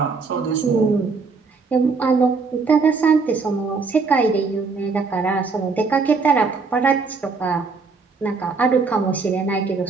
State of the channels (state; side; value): quieter; left; 4.6 dB